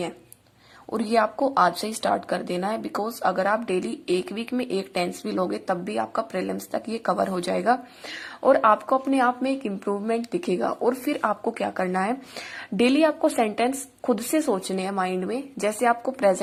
और ये आपको आज से ही स्टार्ट कर देना है, बिकॉज अगर आप डेली एक वीक में एक टेंस भी लोगे तब भी आपका प्रीलिम्स तक ये कवर हो जाएगा और आपको अपने आप में एक इम्प्रूवमेंट दिखेगा। और फिर आपको क्या करना है, डेली आपको सेंटेंस खुद से सोचने हैं माइंड में, जैसे आपको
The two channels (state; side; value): identical; both; correlation 1.00